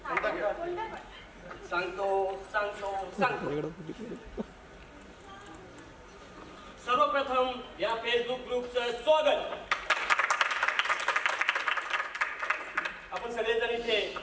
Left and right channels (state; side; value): identical; both; correlation 1.00